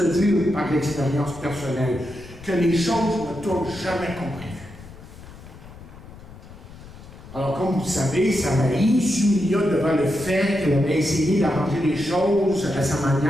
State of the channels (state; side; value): noise; left; rumble, 17 dB below the sound